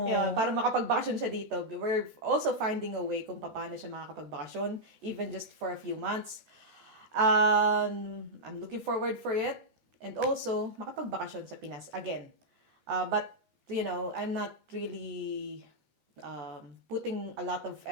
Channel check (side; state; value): left; late; 14 ms